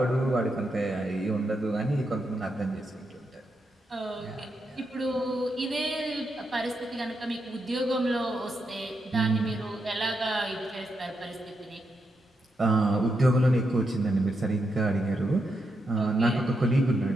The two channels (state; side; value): normal; both; correlation 0.83